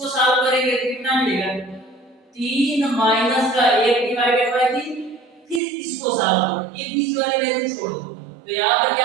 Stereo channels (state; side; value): drops out; left; at 5.6 s